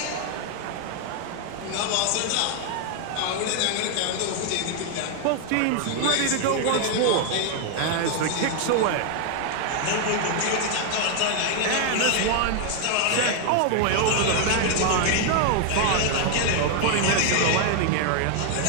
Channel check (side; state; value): both; different; correlation 0.00